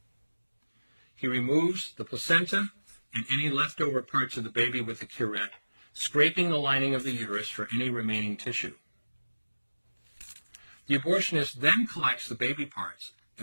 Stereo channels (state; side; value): inverted; both; correlation -1.00